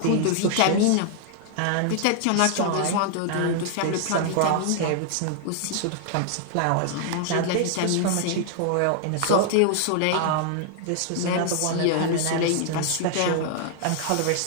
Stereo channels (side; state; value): both; different; correlation 0.00